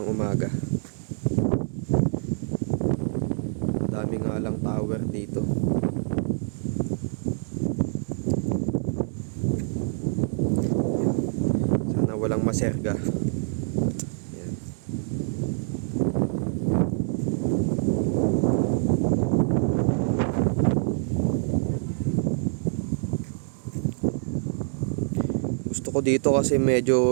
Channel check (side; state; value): left; silent; 61 dB below the other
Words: umaga. Dami nga lang tower dito. Sana walang maserga. Ayan. Gusto ko dito kasi